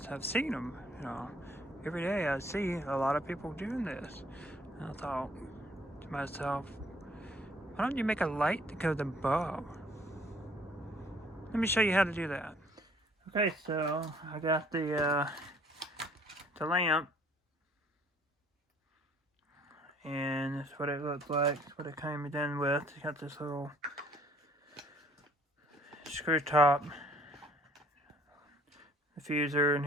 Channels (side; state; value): both; normal; correlation 0.60